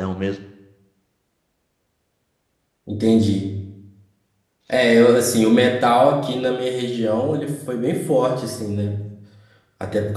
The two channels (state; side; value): identical; both; correlation 1.00